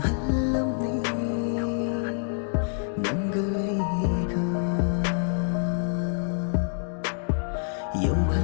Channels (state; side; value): silent; right; digital silence